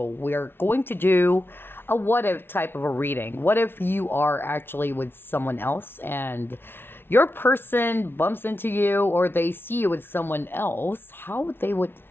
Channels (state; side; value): late; right; 0.11 ms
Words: we're going to do a what if type of a reading. What if you are actually with someone else and your person bumps into you, or they see you with someone else? How would they